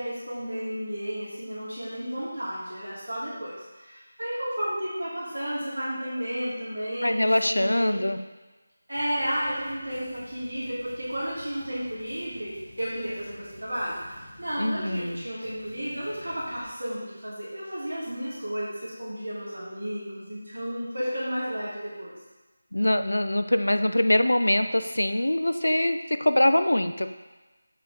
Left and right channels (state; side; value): inverted; both; correlation -0.98